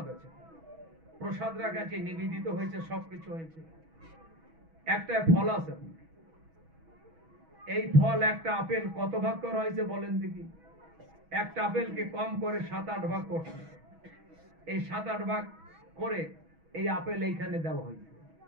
আছে, প্রসাদ রাখা আছে, নিবেদিত হয়েছে, সবকিছু হয়েছে। একটা ফল আছে, এই ফল একটা আপেল কত ভাগ করা হয়েছে বলেন দেখি? একটা আপেলকে কম করে 7-8 ভাগ করছে। এই 7-8 ভাগ করে এই আপেল এইখানে দেওয়া হয়েছে।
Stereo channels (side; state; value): left; late; 6.2 ms